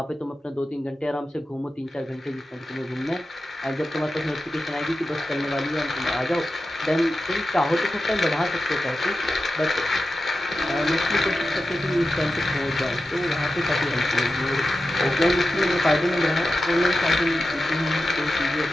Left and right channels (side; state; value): both; normal; correlation 0.92